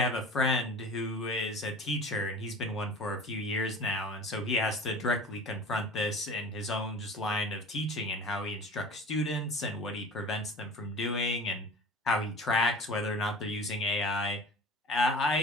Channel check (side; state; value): both; normal; correlation 0.40